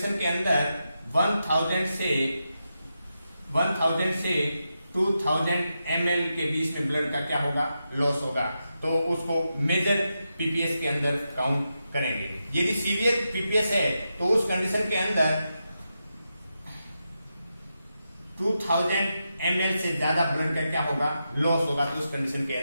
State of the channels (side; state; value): both; inverted; correlation -0.87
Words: के अंदर 1000 से 2000 ml के बीच में ब्लड का क्या होगा, लॉस होगा, तो उसको मेजर PPS के अंदर काउंट करेंगे। यदि सीवियर PPS है तो उस कंडीशन के अंदर 2000 ml से ज्यादा ब्लड का क्या होगा, लॉस होगा, तो उस कंडीशन के